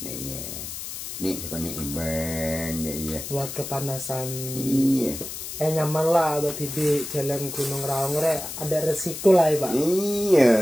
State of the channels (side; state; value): left; noise; hiss, 8 dB below the sound